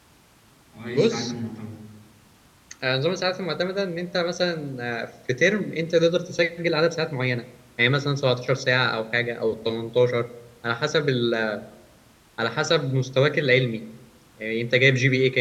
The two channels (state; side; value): identical; both; correlation 1.00